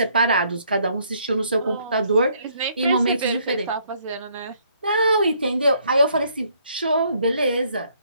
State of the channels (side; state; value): both; inverted; correlation -0.68